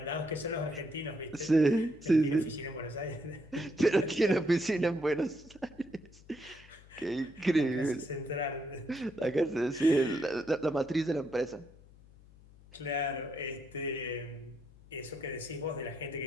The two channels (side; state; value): left; noise; hum, 23 dB below the sound